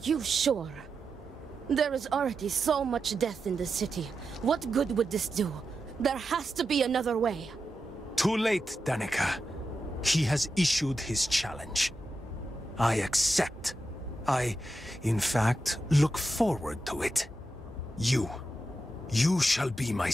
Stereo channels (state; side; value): normal; both; correlation 0.89